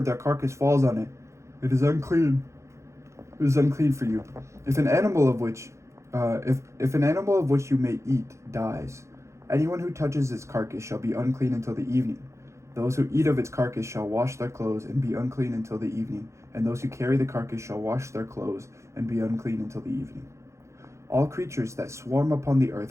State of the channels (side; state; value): left; late; 0.14 ms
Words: their carcass falls on it, it is unclean. It is unclean for you. If an animal of which you may eat dies, anyone who touches its carcass shall be unclean until the evening. Those who eat of its carcass shall wash their clothes and be unclean until the evening, and those who carry the carcass shall wash their clothes and be unclean until the evening. All creatures that swarm upon the